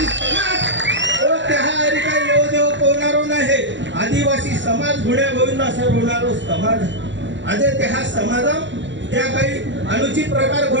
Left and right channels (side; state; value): left; late; 0.54 ms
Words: समाज त्या काही येऊ देव कोणारो नाही. आदिवासी समाज गुणे गोविंदा सर होणारो समाज आधी त्या समाजा त्या काही अनुचित प्रकार